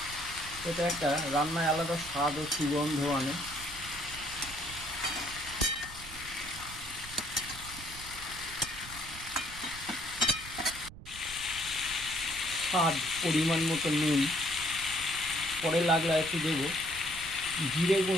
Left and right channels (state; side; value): noise; right; rumble, 15 dB below the sound